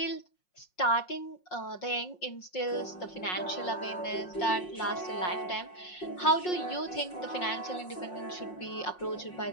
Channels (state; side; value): late; right; 5.6 ms